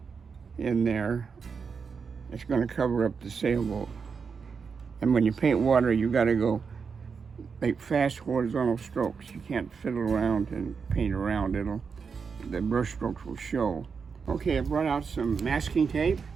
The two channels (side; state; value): left; quieter; 5.7 dB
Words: in there, it's going to cover up the sailboat. And when you paint water, you got to go make fast horizontal strokes. You can't fiddle around and paint around. The brush strokes will show. Okay, I brought out some masking tape,